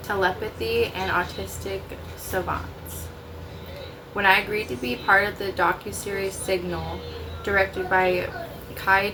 Telepathy and Autistic Savants. When I agreed to be part of the docuseries Signal, directed by Kai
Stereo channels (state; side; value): identical; both; correlation 1.00